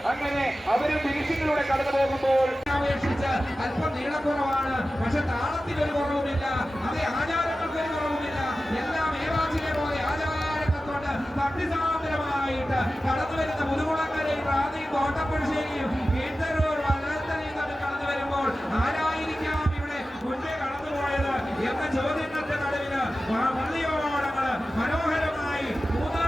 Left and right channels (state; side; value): normal; both; correlation 0.94